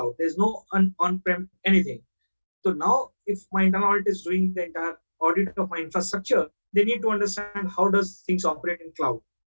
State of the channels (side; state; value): both; inverted; correlation -1.00